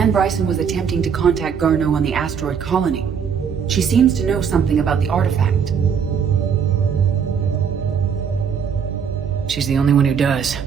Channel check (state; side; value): quieter; left; 7.0 dB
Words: Bryson was attempting to contact Garneau on the asteroid colony. She seems to know something about the artifact. She's the only one who does.